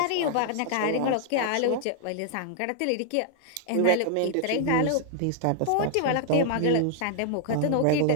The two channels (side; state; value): both; different; correlation -0.01